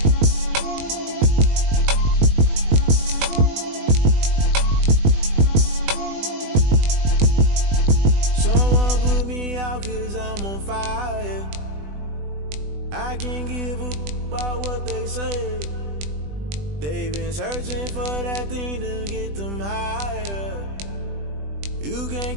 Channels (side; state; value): left; late; 20 ms